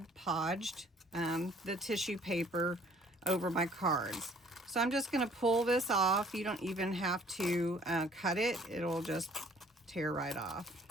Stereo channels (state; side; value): normal; both; correlation 0.57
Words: Podged the tissue paper over my cards. So I'm just going to pull this off. You don't even have to cut it. It'll just tear right